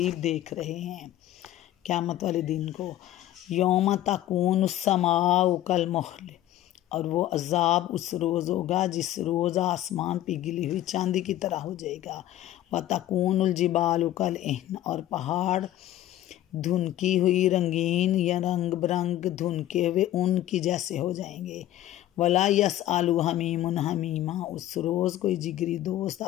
देख रहे हैं क़यामत वाले दिन को। यौम तकून समाउ कल मुहल, और वो अजाब उस रोज़ होगा जिस रोज़ आसमान पिघली हुई चांदी की तरह हो जाएगा। व तकूनुल जिबालु कल इहन, और पहाड़ धुनकी हुई रंगीन या रंग बिरंग धुनके हुए ऊन की जैसे हो जाएंगे। वला यस आलू हमीमुन हमीमा, उस रोज़ कोई जिगरी दोस्त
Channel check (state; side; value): quieter; right; 13.5 dB